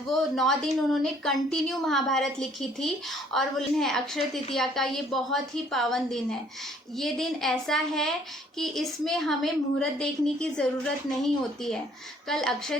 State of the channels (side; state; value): both; normal; correlation 0.61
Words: वो 9 दिन उन्होंने कंटिन्यू महाभारत लिखी थी। और वो है अक्षय तृतीया का, ये बहुत ही पावन दिन है। ये दिन ऐसा है कि इसमें हमें मुहूर्त देखने की ज़रूरत नहीं होती है। कल अक्षय